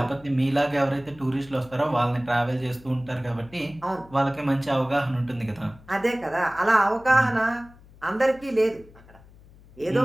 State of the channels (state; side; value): noise; left; hum, 24 dB below the sound